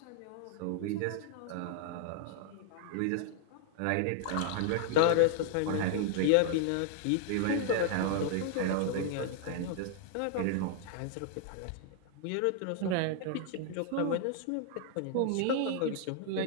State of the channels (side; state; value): both; different; correlation 0.00